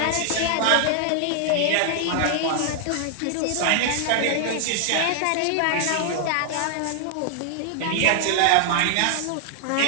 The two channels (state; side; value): different; both; correlation 0.00